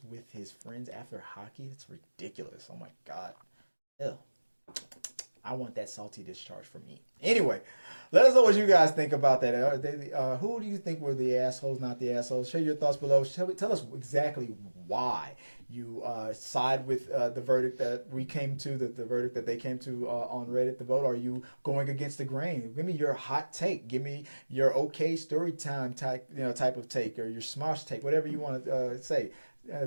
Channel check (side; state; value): both; inverted; correlation -1.00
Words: with his friends after hockey? It's ridiculous. Oh my God. Ew. I want that salty discharge for me." Anyway, let us know what you guys think about that. Who do you think were the assholes, not the assholes? Share your thoughts below. Tell us exactly why you side with the verdict that we came to, the verdict that they came to on Reddit, the vote. Are you going against the grain? Give me your hot take. Give me your okay story time type of take, or your smosh take, whatever you want to say.